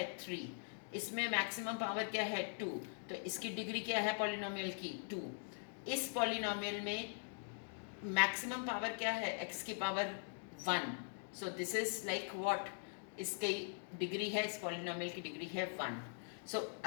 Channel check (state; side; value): silent; right; digital silence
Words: 3. इसमें मैक्सिमम पावर क्या है 2, तो इसकी डिग्री क्या है पॉलिनोमियल की 2. इस पॉलिनोमियल में मैक्सिमम पावर क्या है, x की power 1. So this is like what, इसकी डिग्री है, इस पॉलिनोमियल की डिग्री है 1. सो